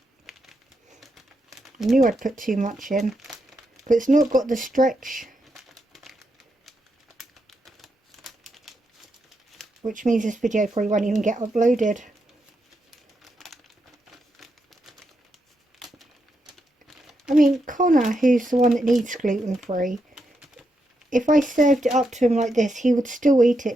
I knew I'd put too much in, but it's not got the stretch, which means this video probably won't even get uploaded. I mean, Connor, who's the one that needs gluten-free, if I served it up to him like this, he would still eat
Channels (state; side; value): normal; both; correlation 0.83